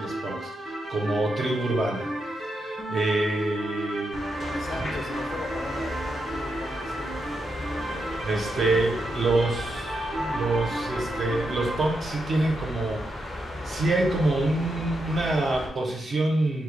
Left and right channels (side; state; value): both; normal; correlation 0.84